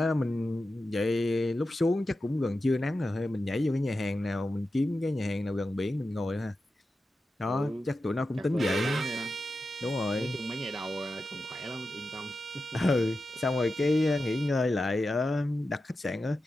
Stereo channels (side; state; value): both; normal; correlation 0.91